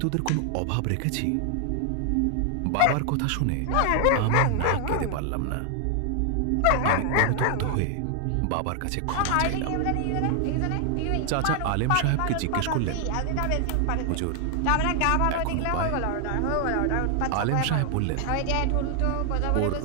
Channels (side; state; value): both; different; correlation 0.00